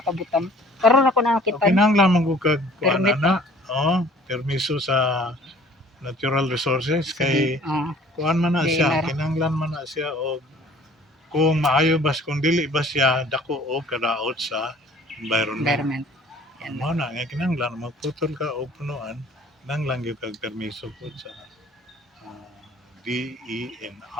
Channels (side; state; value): both; normal; correlation 0.52